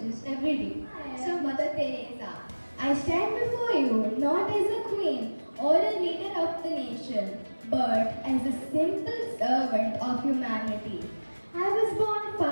every day. So Mother Teresa, I stand before you not as a queen or a leader of the nation, but as a simple servant of humanity. I was born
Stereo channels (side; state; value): both; inverted; correlation -1.00